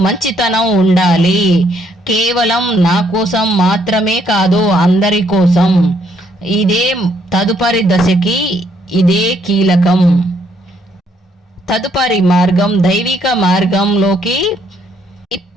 మంచితనం ఉండాలి. కేవలం నా కోసం మాత్రమే కాదు, అందరి కోసం. ఇదే తదుపరి దశకి ఇదే కీలకం. తదుపరి మార్గం దైవిక మార్గంలోకి.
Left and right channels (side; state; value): both; normal; correlation 0.70